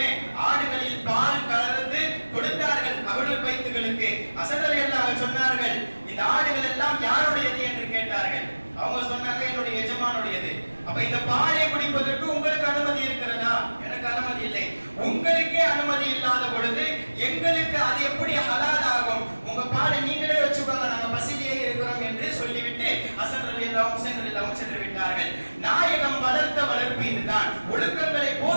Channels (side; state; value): both; inverted; correlation -1.00